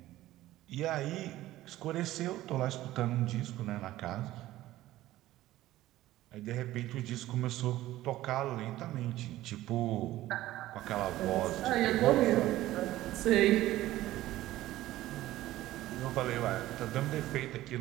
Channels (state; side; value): quieter; left; 15.5 dB